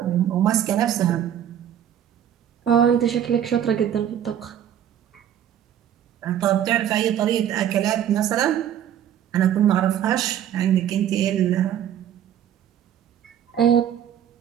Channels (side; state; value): left; quieter; 10.1 dB